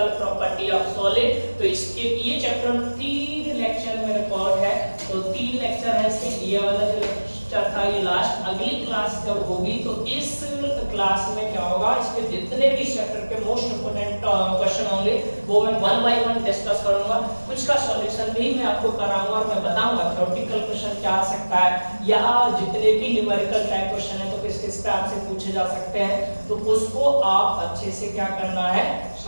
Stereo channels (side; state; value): both; inverted; correlation -1.00